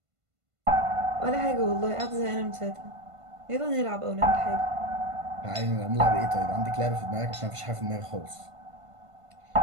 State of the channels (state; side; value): late; left; 1.5 ms